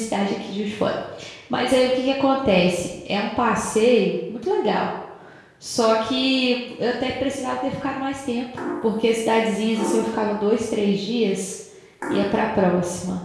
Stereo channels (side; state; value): both; identical; correlation 1.00